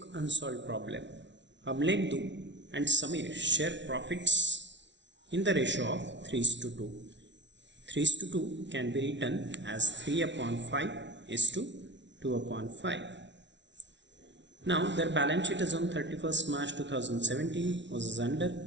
unsolved problem. Amlendu and Samir share profits in the ratio of 3:2. 3:2 can be written as 3/5 is to 2/5. Now their balance sheet is on 31st March 2017 was as under.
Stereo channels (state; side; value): late; left; 0.52 ms